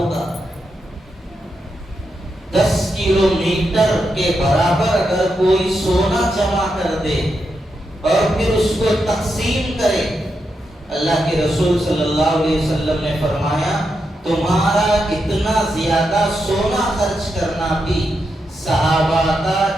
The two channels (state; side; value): normal; both; correlation 0.85